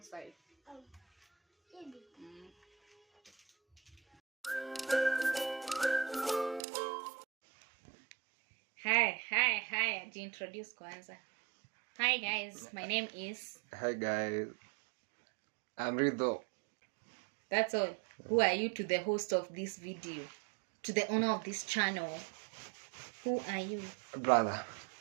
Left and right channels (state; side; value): drops out; left; at 6.6 s